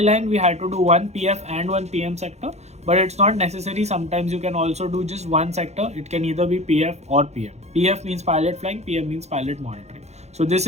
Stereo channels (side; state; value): left; late; 0.32 ms